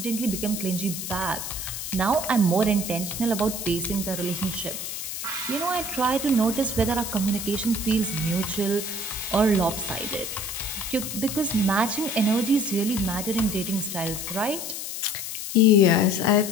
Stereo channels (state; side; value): noise; left; hiss, 6 dB below the sound